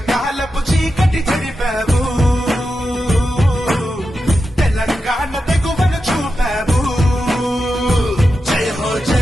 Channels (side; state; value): both; normal; correlation 0.90